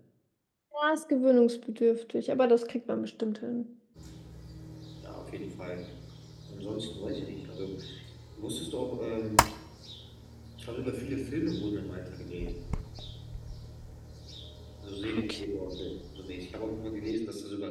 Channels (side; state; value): both; identical; correlation 1.00